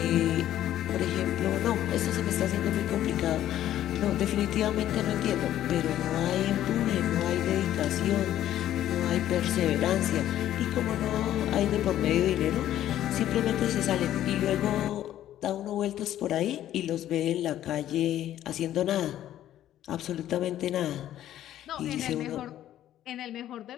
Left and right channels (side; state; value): right; quieter; 12.3 dB